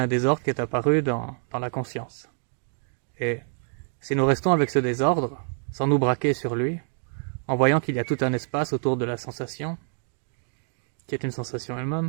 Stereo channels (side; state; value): left; silent; digital silence